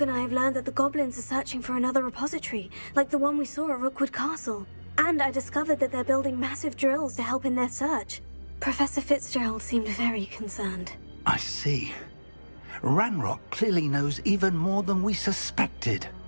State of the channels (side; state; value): both; inverted; correlation -1.00